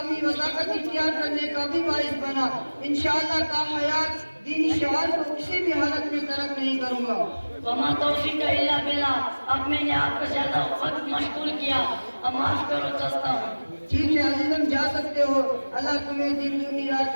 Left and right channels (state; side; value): inverted; both; correlation -1.00